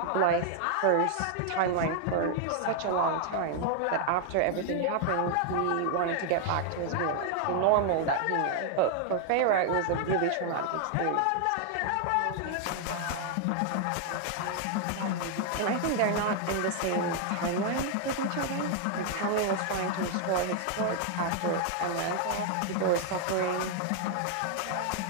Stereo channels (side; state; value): both; different; correlation 0.00